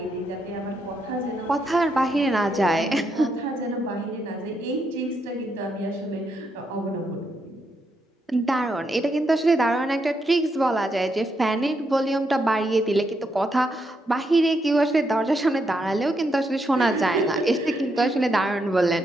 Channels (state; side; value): normal; both; correlation 0.80